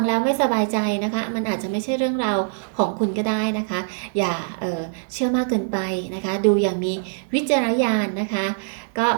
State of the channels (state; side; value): silent; left; digital silence